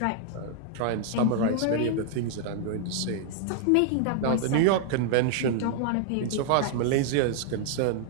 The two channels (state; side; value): different; both; correlation -0.01